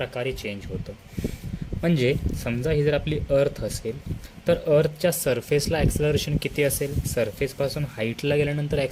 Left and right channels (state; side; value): identical; both; correlation 1.00